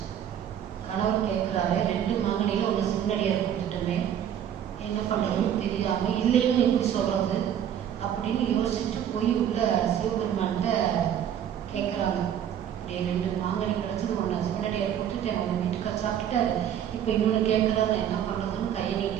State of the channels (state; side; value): quieter; left; 9.8 dB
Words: கணவர் கேட்குறாரு, 2 மாங்கனியில் ஒன்று சிவனடியார் கொடுத்துட்டோமே, என்ன பண்ணுறதுன்னு தெரியாமல் இல்லைன்னு எப்படி சொல்கிறது அப்படின்னு யோசிச்சுட்டு போய் உள்ள சிவபெருமான்கிட்ட கேட்குறாங்க. இப்படி 2 மாங்கனி கிடச்சது, ஒன்று சிவனடியார் கொடுத்துட்டேன், உங்கள் வீட்டுக்கார சாப்பிட்டுட்டாரு, இப்போ இன்னொன்று கேட்குறாரு, நான் என்ன பண்ணுறதுன்னு கையை